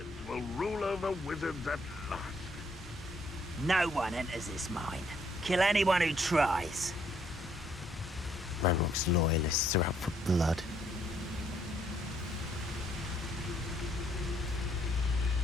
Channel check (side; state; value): both; normal; correlation 0.68